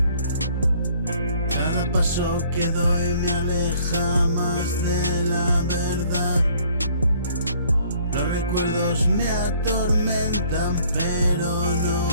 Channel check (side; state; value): both; inverted; correlation -0.59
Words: Cada paso que doy me aleja más de la verdad. Los recuerdos me atormentan, pero